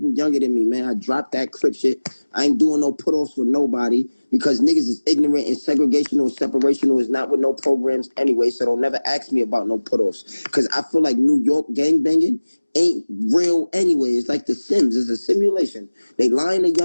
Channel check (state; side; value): inverted; both; correlation -1.00